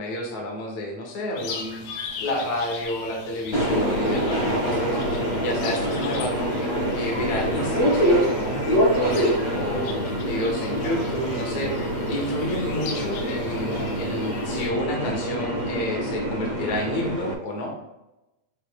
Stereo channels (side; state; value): right; late; 8.5 ms